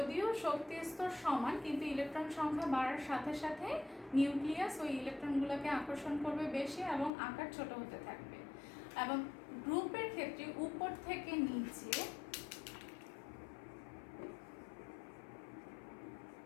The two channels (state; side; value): drops out; right; at 7.1 s